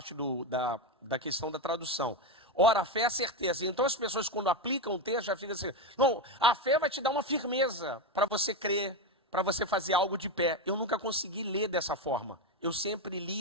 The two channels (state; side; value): normal; both; correlation 0.12